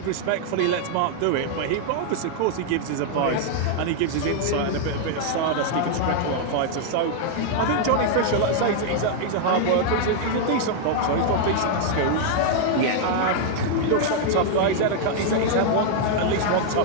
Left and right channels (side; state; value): both; different; correlation -0.01